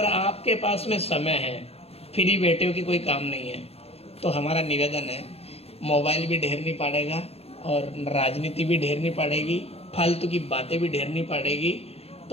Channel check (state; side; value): late; right; 0.29 ms